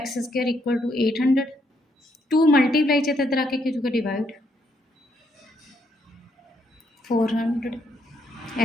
square equal to 800। 2 multiply च इधर आके क्या होगा डिवाइड 400,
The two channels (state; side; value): normal; both; correlation 0.74